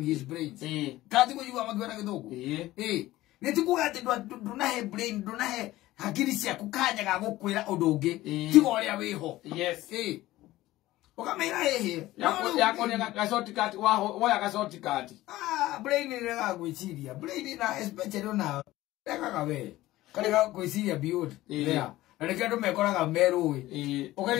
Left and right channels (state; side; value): quieter; right; 16.7 dB